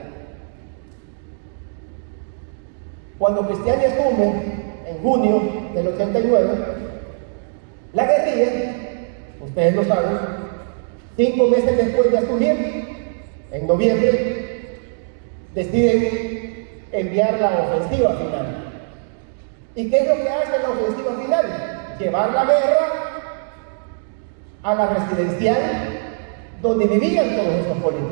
Cuando Cristiani asume, en junio del 89, la guerrilla, ustedes lo saben, 5 meses después de asumir, en noviembre, deciden enviar la ofensiva final. ¿Y qué es lo que hace la ofensiva final? Llevar la guerra a la residencial donde vivían todos estos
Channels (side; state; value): left; silent; digital silence